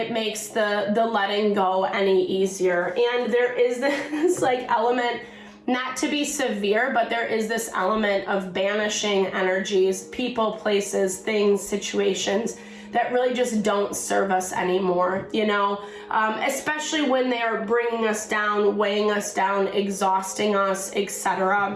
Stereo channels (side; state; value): both; identical; correlation 1.00